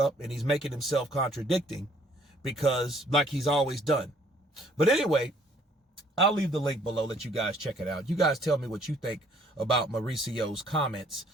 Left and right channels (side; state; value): both; normal; correlation 0.61